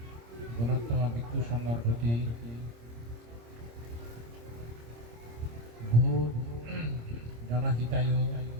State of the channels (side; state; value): left; late; 26 ms